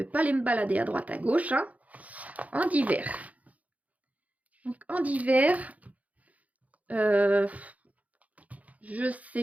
pas aller me balader à droite à gauche. Hein. En divers. Donc en divers, je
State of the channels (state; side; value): late; left; 0.071 ms